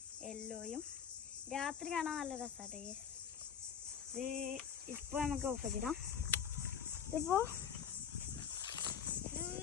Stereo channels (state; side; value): quieter; right; 7.9 dB